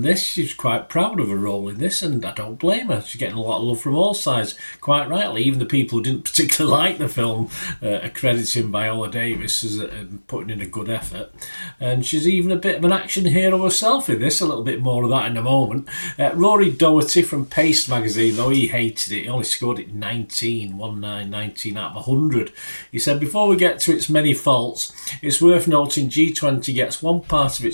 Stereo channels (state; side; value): inverted; both; correlation -1.00